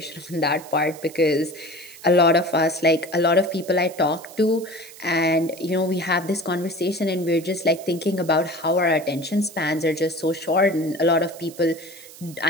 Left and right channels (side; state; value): right; noise; hiss, 19 dB below the sound